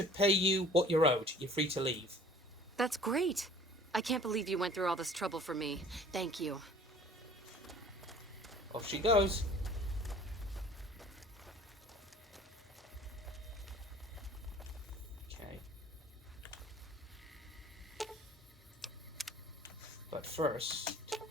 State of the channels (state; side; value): normal; both; correlation 0.49